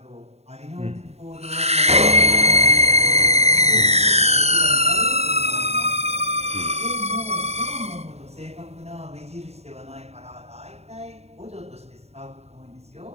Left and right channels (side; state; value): left; late; 0.31 ms